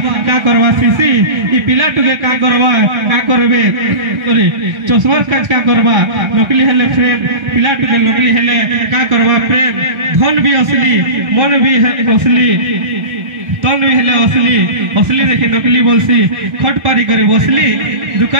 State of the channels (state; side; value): late; left; 1.4 ms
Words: का करबा सीसी ई पिला टुके का करबे अरे चश्मा काज का करबा नकली हेले फ्रेम पिला टुके नकली हेले का करबा प्रेम धन भी असली मन भी असली तन भी हेले असली असली देखि नकली बोलसी खट पारी करे बसली